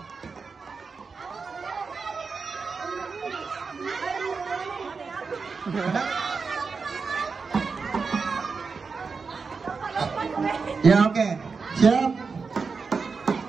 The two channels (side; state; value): left; quieter; 4.9 dB